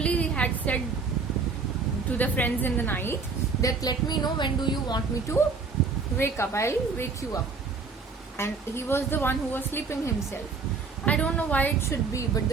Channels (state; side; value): quieter; left; 4.7 dB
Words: had said to the friends in the night that let me know when do you want me to wake up. I'll wake you up. And he was the one who was sleeping himself. I don't know why it should be, but